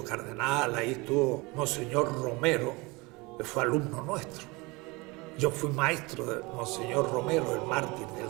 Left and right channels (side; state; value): left; quieter; 25.2 dB